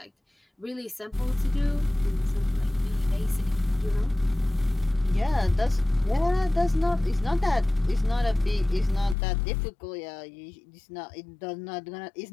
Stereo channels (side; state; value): right; drops out; at 9.2 s